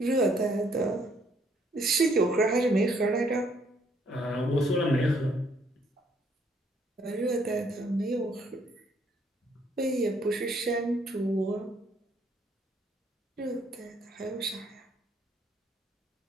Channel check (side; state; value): both; normal; correlation 0.67